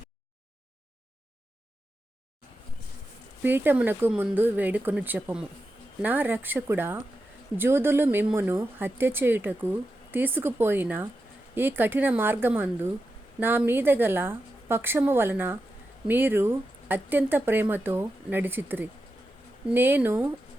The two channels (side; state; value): both; normal; correlation 0.89